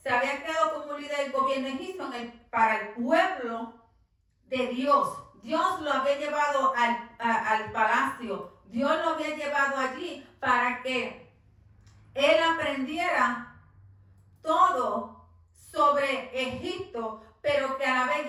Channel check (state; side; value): identical; both; correlation 1.00